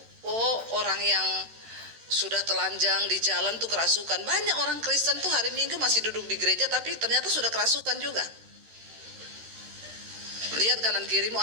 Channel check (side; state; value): left; late; 13 ms